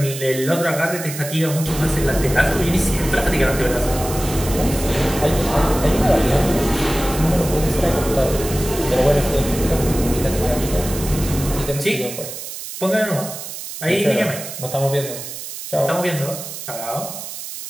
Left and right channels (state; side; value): noise; right; hiss, 9 dB below the sound